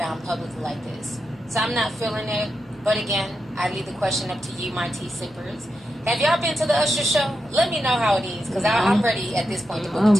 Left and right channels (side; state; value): both; normal; correlation 0.87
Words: publicly like this. So I'm not feeling it. But again, I leave the question up to you, my tea sippers. Have y'all been to the Usher show? Let me know how it is, because I'm ready at this point to book a